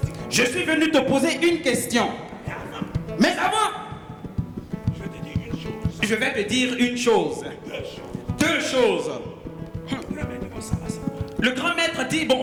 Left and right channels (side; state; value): both; identical; correlation 1.00